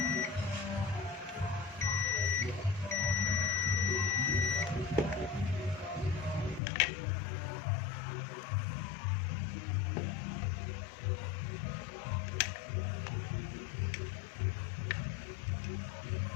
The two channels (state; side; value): drops out; right; at 6.6 s